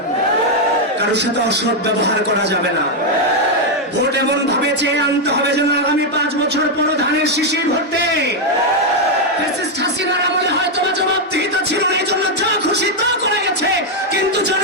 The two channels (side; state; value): both; normal; correlation 0.01